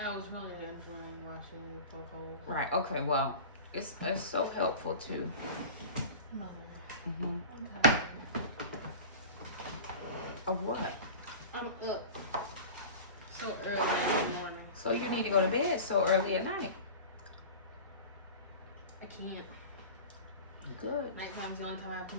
was really enjoying watching you poke holes. Right. Okay. Well, it's so helpful too. Mother. Okay. Of what? I'm up so early in the morning. So you need to go to bed so early at night. I can't. Good. Nighttime's the only time I have to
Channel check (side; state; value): both; inverted; correlation -0.35